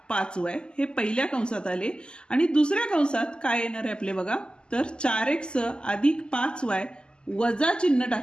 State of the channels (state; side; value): late; right; 0.048 ms